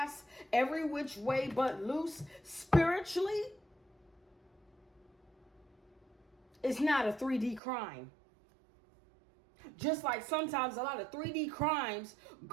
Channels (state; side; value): drops out; left; at 7.6 s